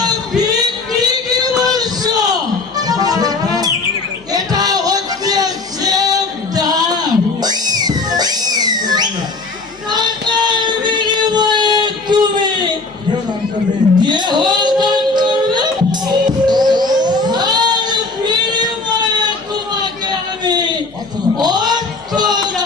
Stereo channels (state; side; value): quieter; right; 3.7 dB